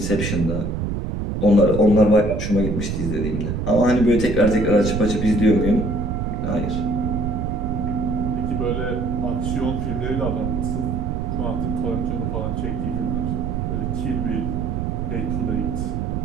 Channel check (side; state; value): right; noise; rumble, 2 dB below the sound